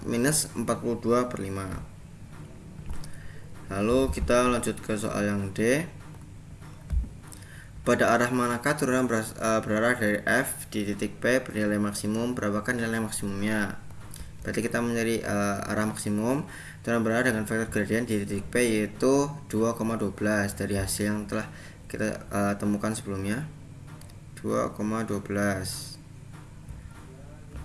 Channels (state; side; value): identical; both; correlation 1.00